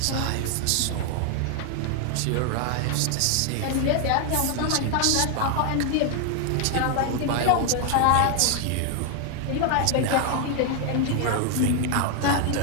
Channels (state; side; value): different; both; correlation 0.00